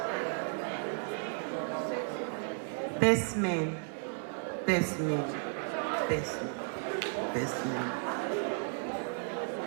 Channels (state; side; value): silent; left; 55 dB below the other